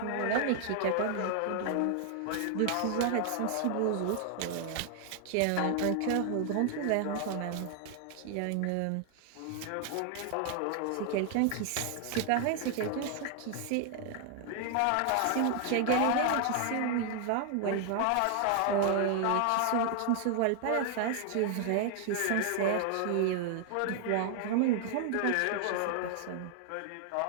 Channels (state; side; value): different; both; correlation 0.00